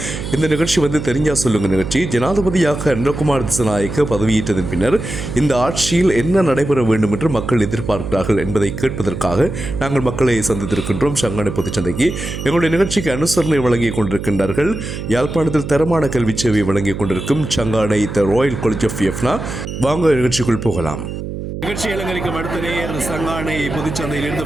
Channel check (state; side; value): noise; right; hum, 7 dB below the sound